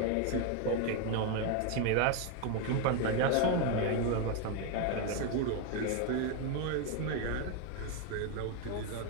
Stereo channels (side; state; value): both; different; correlation 0.01